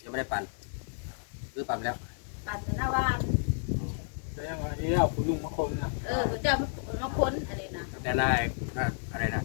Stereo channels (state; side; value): silent; right; digital silence